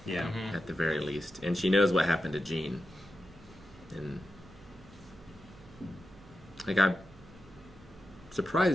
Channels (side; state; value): right; noise; hum, 22 dB below the sound